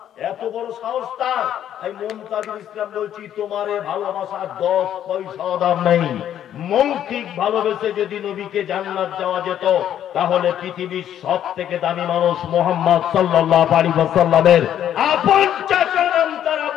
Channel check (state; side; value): quieter; right; 10.5 dB